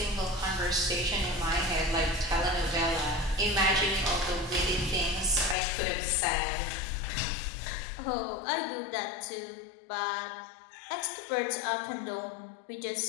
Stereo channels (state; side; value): drops out; right; at 5.6 s